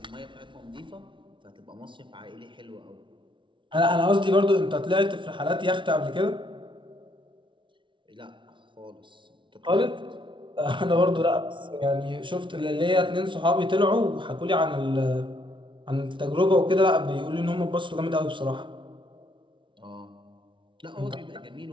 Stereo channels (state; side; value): late; left; 0.24 ms